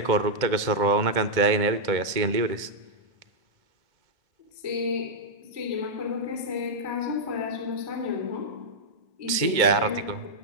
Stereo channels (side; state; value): left; late; 2.1 ms